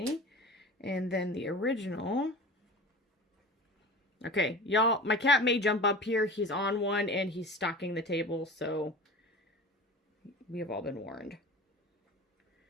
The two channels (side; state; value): both; normal; correlation 0.35